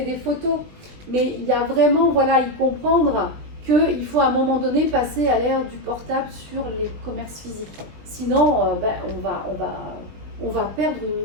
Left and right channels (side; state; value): left; late; 20 ms